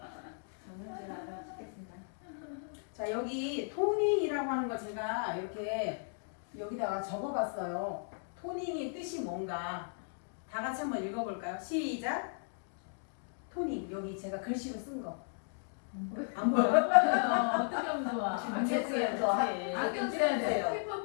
저는 제가 알아 찍겠습니다. 자 여기 토닝이라고 하는 거 제가 이렇게 여기다가 적어봤어요. 토닝의 뜻이 뭔가 다 같이 한번 읽어볼까요? 시작. 토닝 여기 제가 글씨로 쓴 거. 안 보여? 어떻게 하면 좋아? 안경 쓰여서 안경 써야 돼.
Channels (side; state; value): right; silent; digital silence